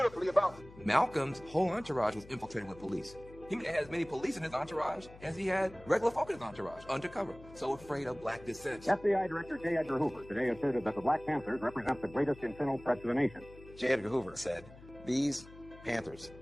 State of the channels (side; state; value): left; noise; hum, 19 dB below the sound